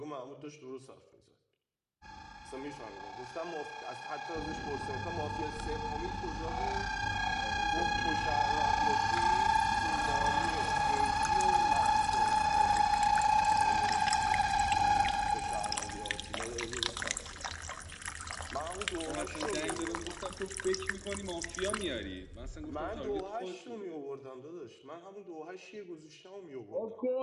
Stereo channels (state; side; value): identical; both; correlation 1.00